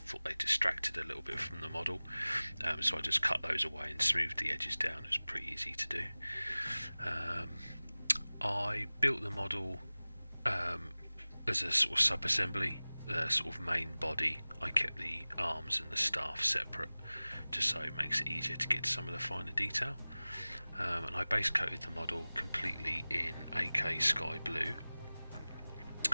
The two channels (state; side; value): inverted; both; correlation -0.99